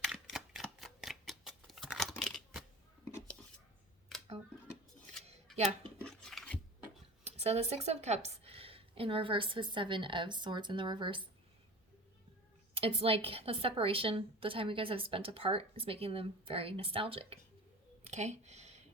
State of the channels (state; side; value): normal; both; correlation 0.36